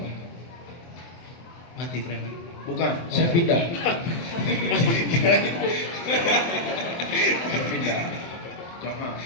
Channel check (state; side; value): late; right; 24 ms